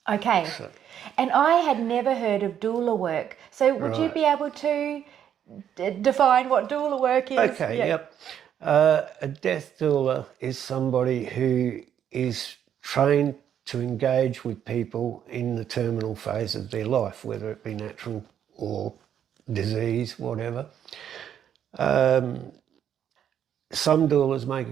Okay. And I had never heard of doula work. So would you Right. be able to define what doula work is? Okay, yep. A death doula is somebody who is trained to engage with people in the terminal phase of their life, whether it be natural or disease, whatever. Some doulas make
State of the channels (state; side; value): quieter; left; 9.4 dB